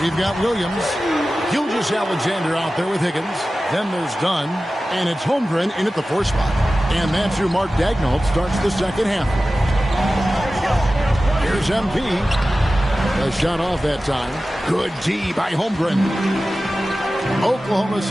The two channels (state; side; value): normal; both; correlation 0.95